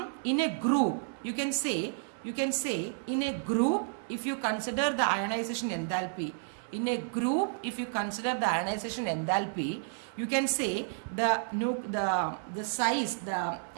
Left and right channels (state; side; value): silent; left; digital silence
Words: in a group, you can say in a group, if you consider the ionization enthalpy, in a group, if you consider the ionization enthalpy, you can say the size, the